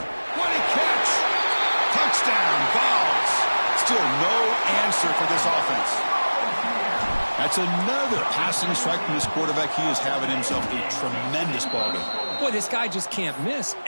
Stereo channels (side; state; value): both; inverted; correlation -1.00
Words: a catch! Touchdown, Vols. Still no answer for this offense. That's another passing strike from this quarterback. He is having himself a tremendous ball game. Boy, this guy just can't miss.